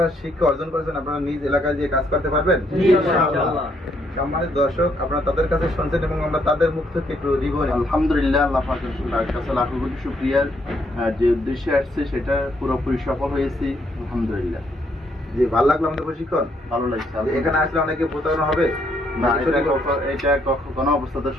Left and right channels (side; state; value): both; normal; correlation 0.72